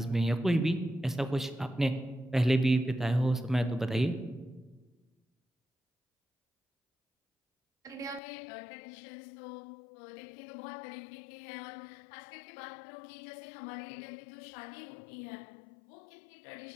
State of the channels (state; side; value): drops out; right; at 8.2 s